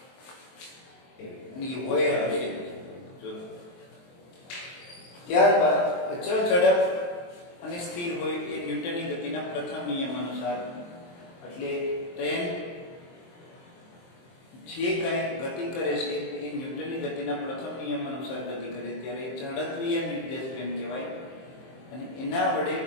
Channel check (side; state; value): right; late; 23 ms